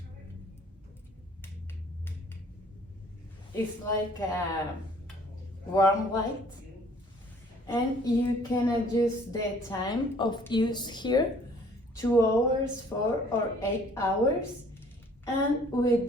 It's like a warm light, and you can adjust the time of use here, 2 hours, 4 or 8 hours. And with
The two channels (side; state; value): both; normal; correlation 0.56